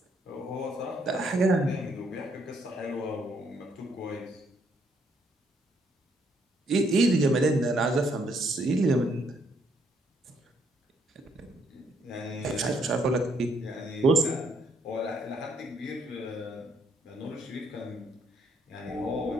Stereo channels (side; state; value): both; normal; correlation 0.70